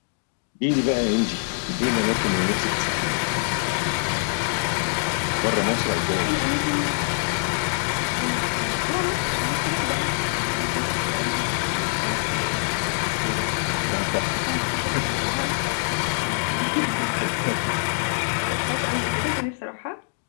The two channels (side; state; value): right; silent; digital silence